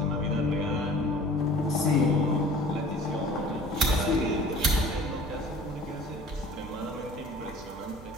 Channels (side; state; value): both; normal; correlation 0.46